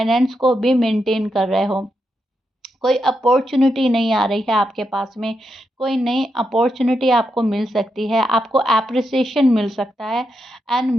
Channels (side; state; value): both; normal; correlation 0.84